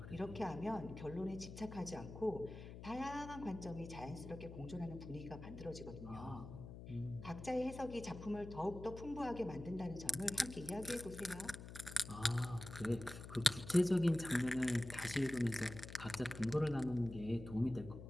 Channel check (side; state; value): left; noise; hum, 11 dB below the sound